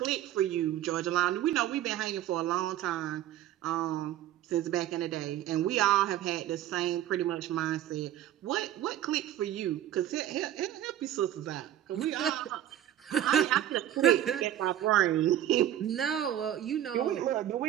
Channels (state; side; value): quieter; left; 12.0 dB